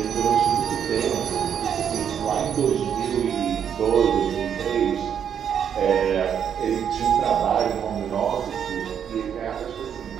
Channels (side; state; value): left; quieter; 8.3 dB